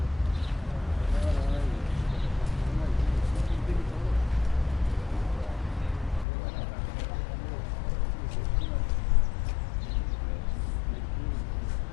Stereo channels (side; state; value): right; drops out; at 6.2 s